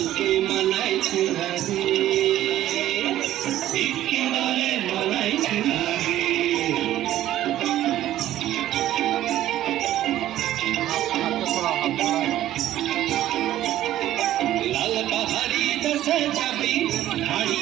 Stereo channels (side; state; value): left; quieter; 13.3 dB